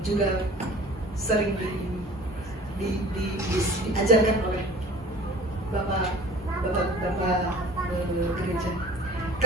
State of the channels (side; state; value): both; normal; correlation 0.46